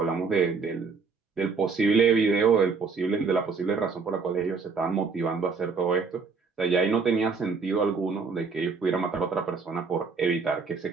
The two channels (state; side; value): quieter; left; 4.9 dB